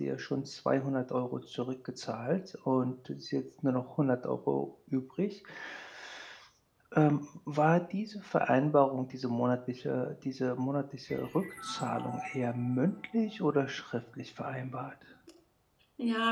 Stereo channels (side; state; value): both; identical; correlation 1.00